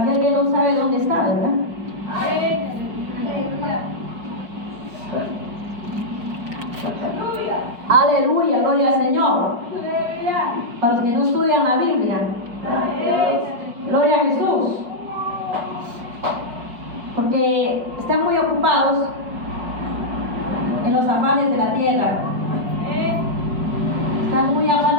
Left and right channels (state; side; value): late; left; 5.0 ms